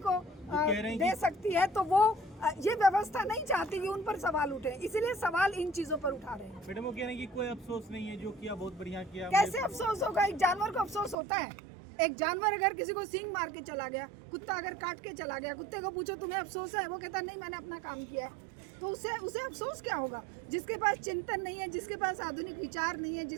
दे सकती है, तो वो ये व्यवस्था नहीं चाहती कि उन पर सवाल उठे। इसीलिए सवाल इन चीजों पर उठा रहे हैं। मैडम वो कह रहे हैं कि कोई अफसोस नहीं है, जो किया बहुत बढ़िया किया। कैसे अफसोस होगा? एक जानवर को अफसोस होता है? एक जानवर अगर किसी को सींग मार के चला गया, कुत्ता अगर काट के चला गया, कुत्ते को पूछो तुम्हें अफसोस है? वो कहता नहीं, मैंने अपना काम किया है। तो उसे अफसोस क्या होगा? जिसके पास चिंतन नहीं है, जिसके पास आधुनिक विचार नहीं है,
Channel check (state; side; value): drops out; left; at 11.2 s